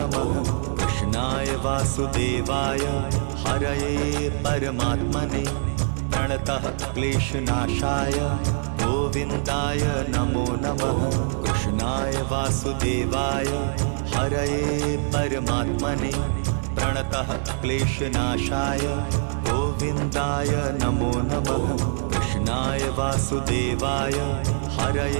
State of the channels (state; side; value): silent; left; 57 dB below the other